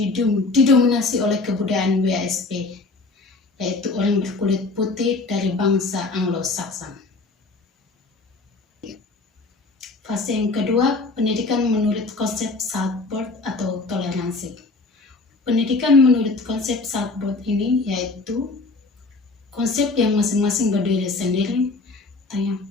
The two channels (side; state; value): right; quieter; 3.6 dB